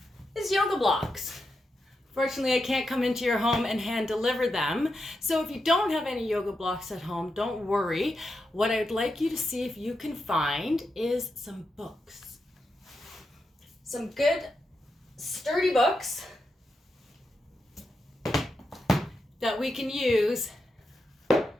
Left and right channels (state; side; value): normal; both; correlation 0.86